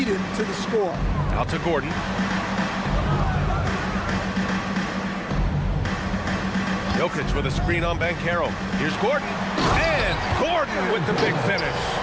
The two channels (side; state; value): both; identical; correlation 1.00